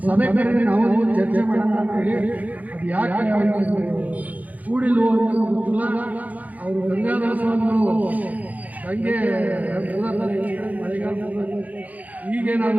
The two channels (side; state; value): left; late; 0.076 ms